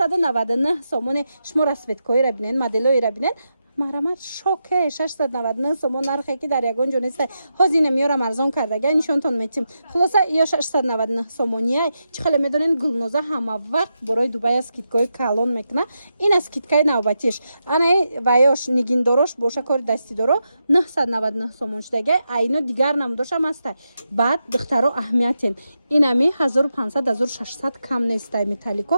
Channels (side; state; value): both; inverted; correlation -0.87